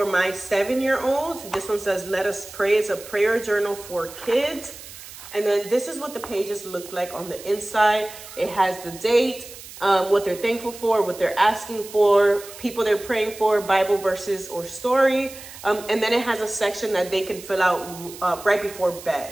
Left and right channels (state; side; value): noise; right; hiss, 15 dB below the sound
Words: my 7-year-old. This one says, let us pray. It's a prayer journal for kids. And then this is what the pages look like on the inside. It has the date, what they're thankful for, what they're asking for, people they're praying for, Bible verses or story. And then it has a section that they can fill out right before